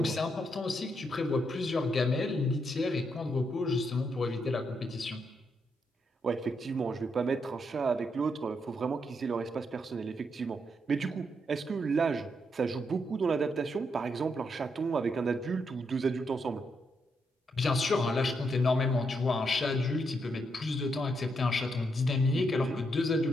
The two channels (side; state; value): both; normal; correlation 0.79